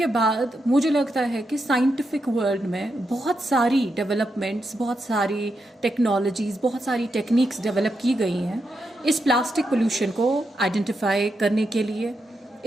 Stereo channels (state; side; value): normal; both; correlation 0.84